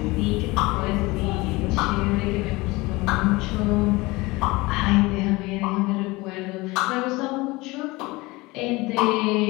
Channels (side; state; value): right; quieter; 22.3 dB